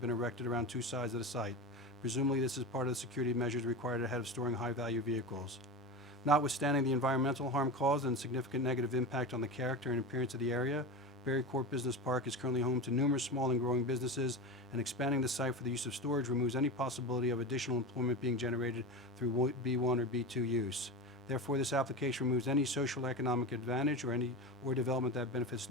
erected around 2 sides of the site. Presumably this is part of the security measures required ahead of storing high value vehicles. Notwithstanding the environmental harm caused and significant negative impact on the character and appearance of the area, Berry Court Business Park is currently home to numerous small and growing businesses, and expanding the site for the use of storage removes any possibility of additional employment being generated through B1 or B2 use. Therefore, this application removes any social economic advantage or development that benefits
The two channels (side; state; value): both; normal; correlation 0.25